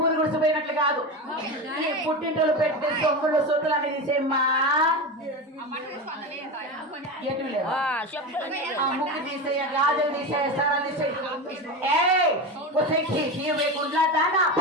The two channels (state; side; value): normal; both; correlation 0.22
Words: గుడిసిపోయినట్లు కాదు, పుట్టింటలు పెట్టి సొమ్ములు సొత్తులు అని తీసేమ్మా. ముక్కు తీసేయ, గాజులు తీసేయ, సరాలు తీసేయ. గుడ్లా దానా